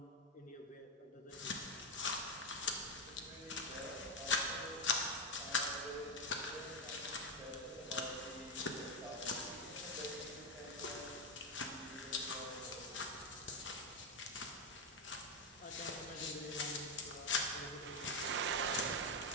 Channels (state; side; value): normal; both; correlation 0.08